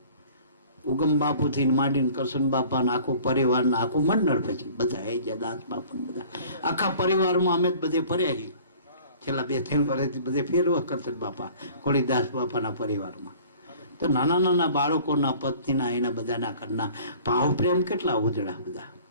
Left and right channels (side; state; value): both; inverted; correlation -0.48